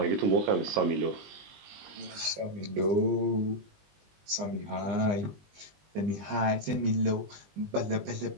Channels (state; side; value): late; left; 20 ms